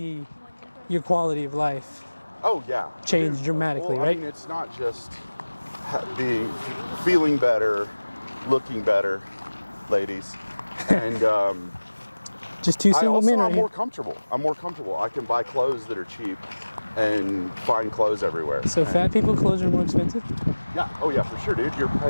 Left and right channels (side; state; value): both; inverted; correlation -1.00